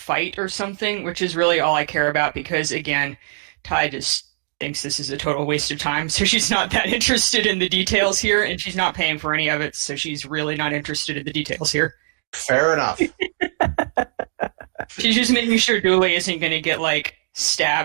or something, which is really all I care about because, again, Ty just thinks this is a total waste of time, so she's not that interested in the details here, and she's not paying for any of it, so she's really not interested in the details here. Fair enough. She's just making sure Dooley isn't going to get, like,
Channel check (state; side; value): silent; left; digital silence